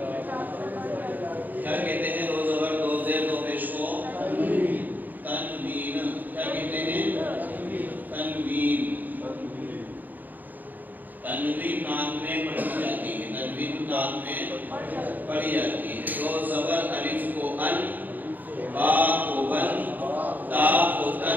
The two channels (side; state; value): left; late; 0.086 ms